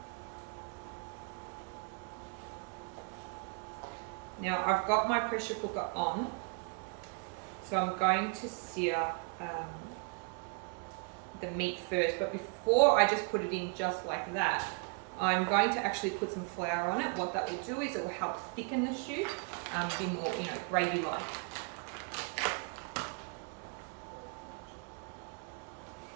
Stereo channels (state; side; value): quieter; left; 35.4 dB